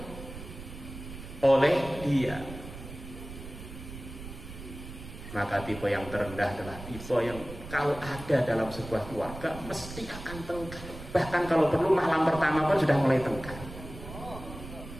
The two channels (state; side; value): noise; right; rumble, 12 dB below the sound